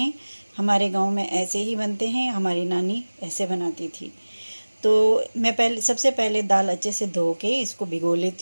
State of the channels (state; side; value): inverted; both; correlation -1.00